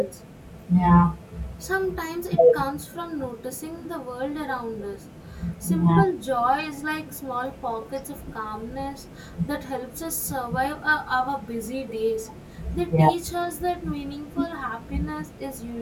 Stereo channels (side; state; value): both; identical; correlation 1.00